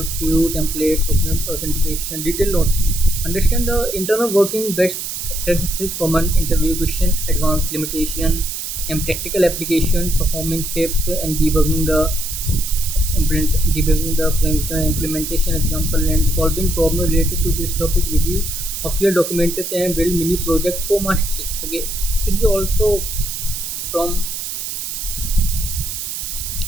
view templates document authentication detailed notes. Understand the internal working best practices common interview question advanced limitation and practical application performing tips and debugging the implementation example and solving problem related to this topic review of your documentation and build mini project for mastery. Okay, this is also from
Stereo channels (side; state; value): right; noise; hiss, 5 dB below the sound